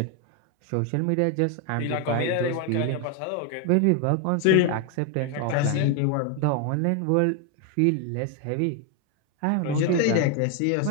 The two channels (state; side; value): different; both; correlation 0.01